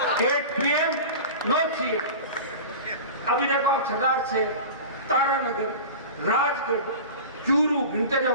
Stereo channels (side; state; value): both; inverted; correlation -0.33